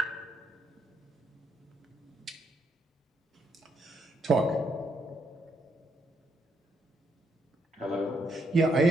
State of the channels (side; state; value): both; normal; correlation 0.76